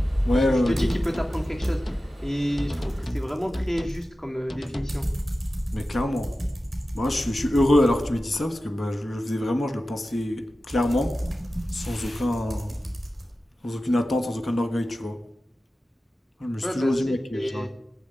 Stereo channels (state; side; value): normal; both; correlation 0.94